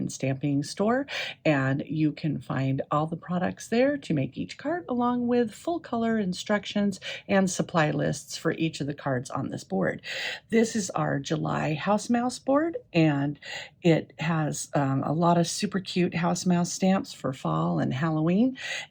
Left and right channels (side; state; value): both; identical; correlation 1.00